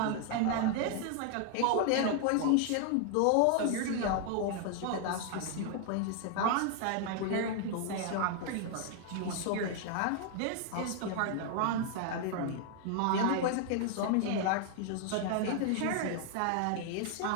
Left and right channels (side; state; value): both; different; correlation 0.00